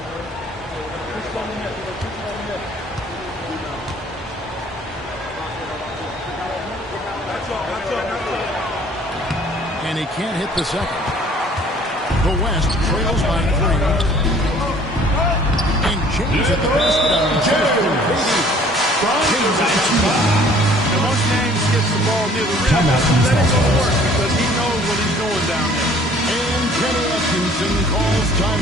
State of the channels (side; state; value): both; normal; correlation 0.55